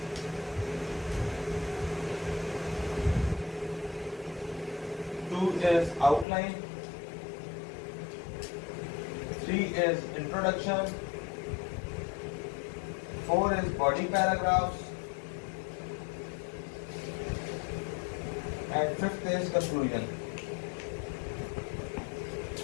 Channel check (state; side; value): drops out; right; at 6.2 s